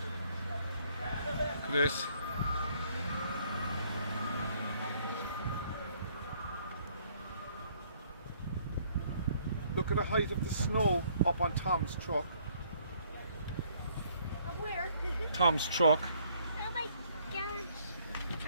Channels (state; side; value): inverted; both; correlation -0.64